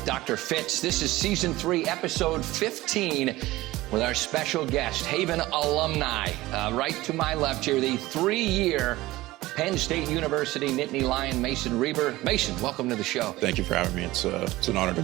Dr. Fitz. This is Season 3, Episode 15, with our special guest, Haven alumni. Right to my left here, the 3-year Penn State University Nittany Lion, Mason Reber. Mason, welcome to the show. Thank you for having me. It's an honor to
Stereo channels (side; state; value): left; quieter; 18.2 dB